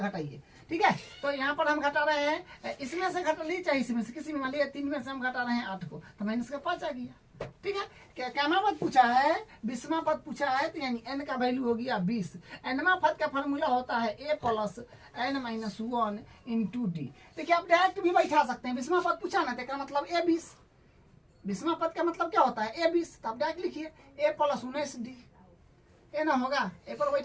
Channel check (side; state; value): both; identical; correlation 1.00